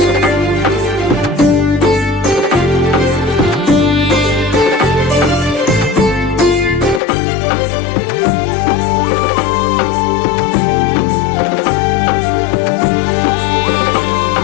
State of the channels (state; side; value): drops out; right; at 7.0 s